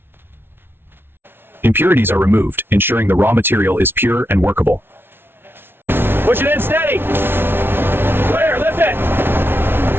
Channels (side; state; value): left; late; 0.11 ms